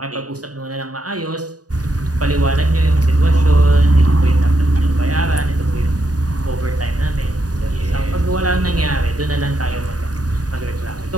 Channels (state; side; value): late; left; 0.68 ms